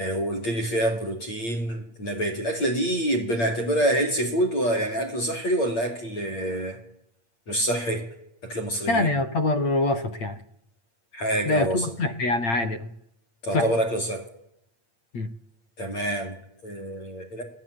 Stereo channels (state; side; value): late; right; 8.7 ms